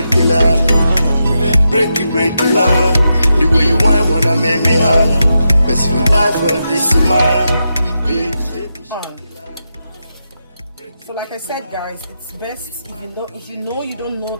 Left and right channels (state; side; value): inverted; both; correlation -0.86